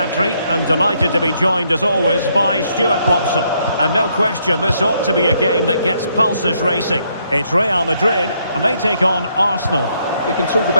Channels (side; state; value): both; inverted; correlation -0.73